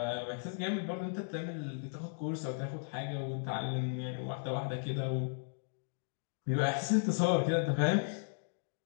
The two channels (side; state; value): right; silent; digital silence